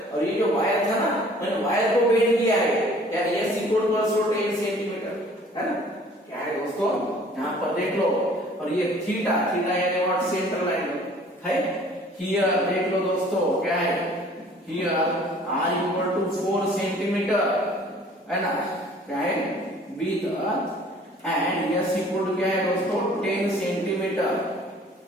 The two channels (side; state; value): both; normal; correlation 0.53